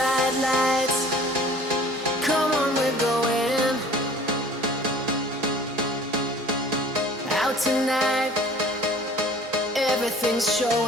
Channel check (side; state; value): both; normal; correlation 0.49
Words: lights. Come on, we're going out tonight. Everything's